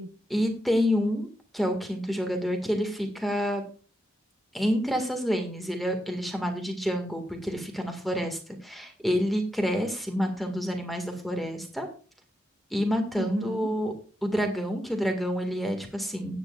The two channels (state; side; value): normal; both; correlation 0.85